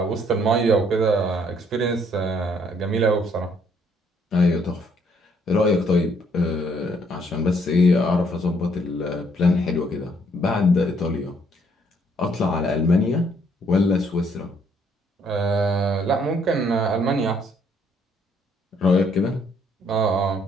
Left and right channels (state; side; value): normal; both; correlation 0.67